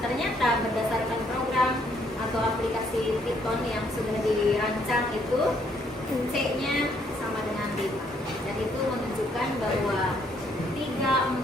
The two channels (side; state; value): both; normal; correlation 0.69